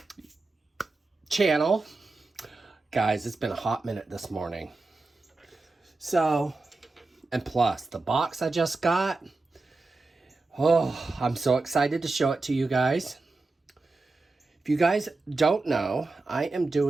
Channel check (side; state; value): left; quieter; 3.5 dB